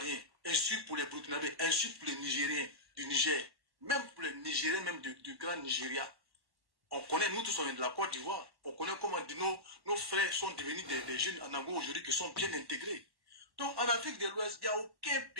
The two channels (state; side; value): late; left; 1.2 ms